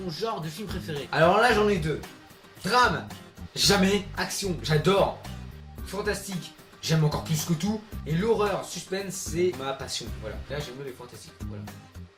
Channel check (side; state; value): both; identical; correlation 1.00